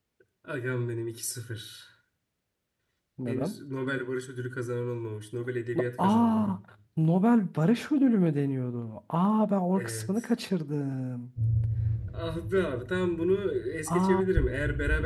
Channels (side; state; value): both; identical; correlation 1.00